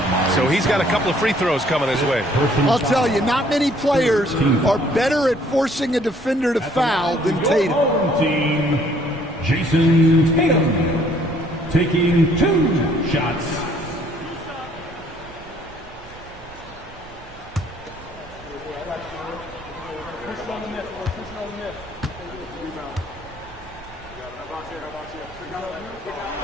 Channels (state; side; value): noise; right; rumble, 21 dB below the sound